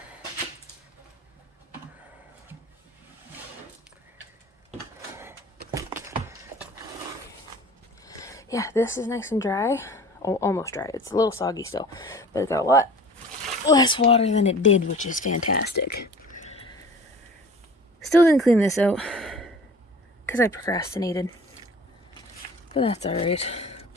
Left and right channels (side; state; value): both; normal; correlation 0.43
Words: Yeah, this is nice and dry. Oh, almost dry. It's a little soggy still, but it's got a lot less water than it did, which is fantastic. Still didn't clean this out because I procrastinated, but that's alright.